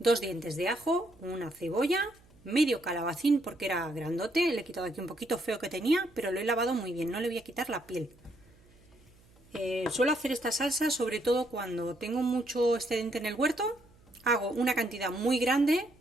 dientes de ajo, una cebolla, medio calabacín porque era grandote, le he quitado aquí un poquito feo que tenía, pero lo he lavado muy bien, no le voy a quitar la piel. Suelo hacer esta salsa sobre todo cuando tengo mucho excedente en el huerto, hago una cantidad muy grande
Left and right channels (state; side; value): noise; right; hum, 28 dB below the sound